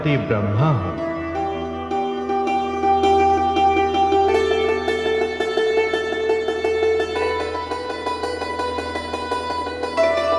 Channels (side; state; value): both; identical; correlation 1.00